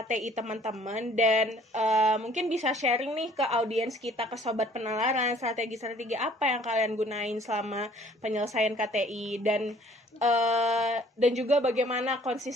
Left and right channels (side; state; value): both; normal; correlation 0.56